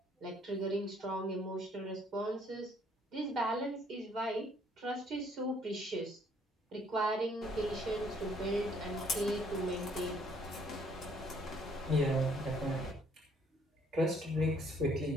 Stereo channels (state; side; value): normal; both; correlation 0.64